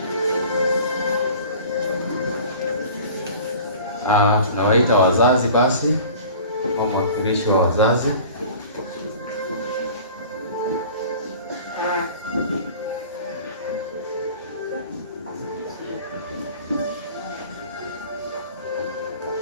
Tunawaita wazazi basi, mwakilishi wa wazazi.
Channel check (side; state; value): both; inverted; correlation -0.43